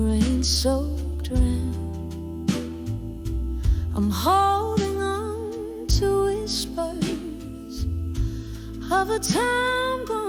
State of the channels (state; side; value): identical; both; correlation 1.00